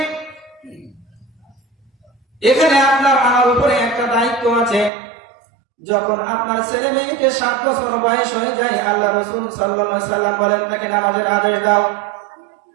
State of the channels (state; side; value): drops out; left; at 4.9 s